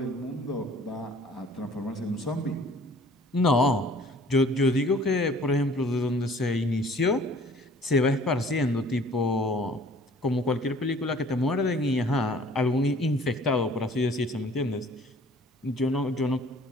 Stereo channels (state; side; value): normal; both; correlation 0.53